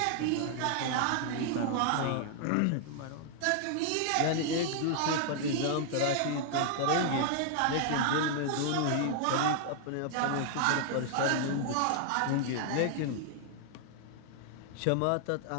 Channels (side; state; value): both; different; correlation 0.00